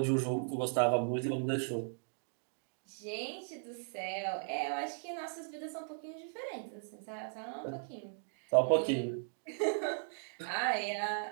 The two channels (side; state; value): left; silent; digital silence